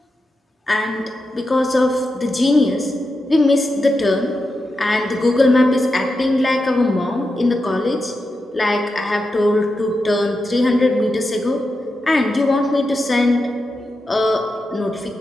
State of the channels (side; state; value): both; normal; correlation 0.88